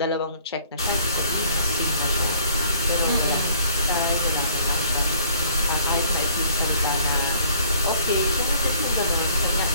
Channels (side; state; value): both; inverted; correlation -0.58